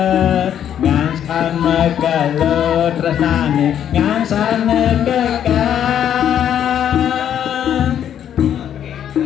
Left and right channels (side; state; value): right; quieter; 9.8 dB